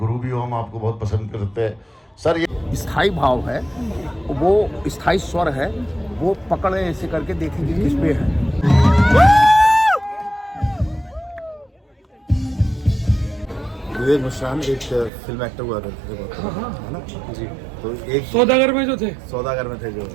भी हो, हम आपको बहुत पसंद करते हैं सर। ये स्थाई भाव है, वो स्थाई स्वर है, वो पकड़े ऐसे करके देखेंगे किस पे है। विवेक मिश्रान एक फिल्म एक्टर हुआ करते थे बहुत, है ना जी। तो एक सौदागर में जो थे, सौदागर में थे जो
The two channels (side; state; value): left; drops out; at 15.1 s